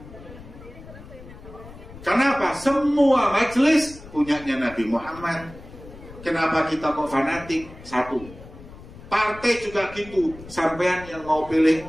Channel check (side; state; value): left; noise; rumble, 17 dB below the sound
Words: Kenapa? Semua majelis punyanya Nabi Muhammad. Kenapa kita kok fanatik? 1. Partai juga gitu. Sampean yang mau pilih